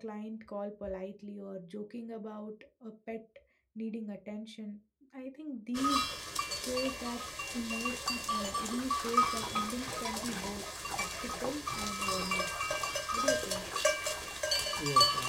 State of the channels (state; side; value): identical; both; correlation 1.00